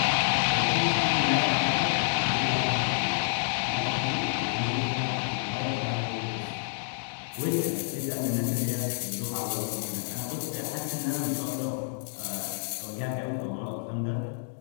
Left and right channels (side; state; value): right; silent; digital silence